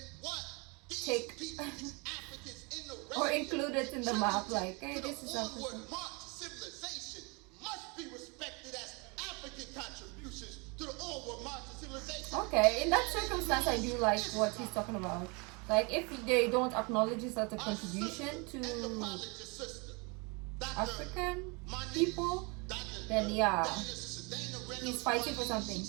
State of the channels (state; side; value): quieter; left; 30.0 dB